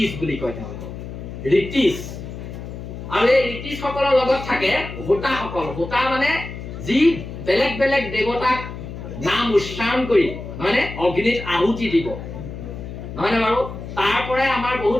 বুলি কয়, তেওঁলোকক ঋতিজ। আৰু এই ঋতিজসকলৰ লগত থাকে হোতাসকল। হোতা মানে যি বেলেগ বেলেগ দেৱতাক নাম উচ্চাৰণ কৰি নহয়নে অগ্নিত আহুতি দিব, নহয়নে বাৰু? তাৰ পৰাই আমাৰ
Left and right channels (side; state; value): left; noise; hum, 10 dB below the sound